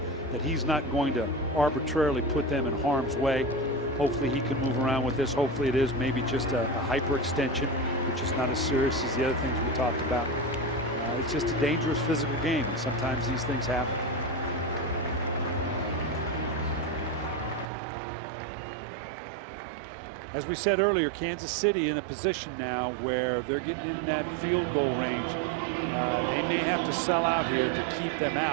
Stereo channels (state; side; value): drops out; left; at 17.7 s